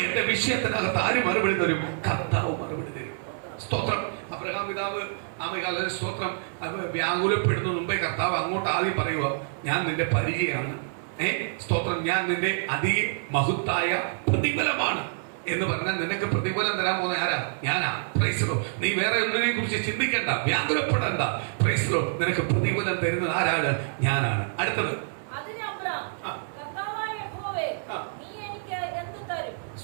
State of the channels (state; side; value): silent; left; 60 dB below the other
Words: എന്റെ വിഷയത്തിനകത്ത് ആര് മറുപടി തരും? കർത്താവ് മറുപടി തരും. സ്തോത്രം. അബ്രഹാം പിതാവ് സ്തോത്രം വ്യാകുലപ്പെടുന്ന മുമ്പേ കർത്താവ് അങ്ങോട്ട് ആദ്യം പറയുക, ഞാൻ നിന്റെ പരിചയമാണ്, സ്തോത്രം, ഞാൻ നിന്റെ അതിമഹത്തായ പ്രതിഫലമാണ് എന്ന് പറഞ്ഞാൽ നിനക്ക് പ്രതിഫലം തരാൻ പോകുന്ന ആരാ? ഞാനാ. Praise Lord. നീ വേറെ ഒന്നിനെ കുറിച്ച് ചിന്തിക്കണ്ട, വ്യാകുലപ്പെടണ്ട. Praise Lord. നിനക്ക് പ്രതിഫലം തരുന്നത് ആരാണ്? ഞാനാണ്. അടുത്തത്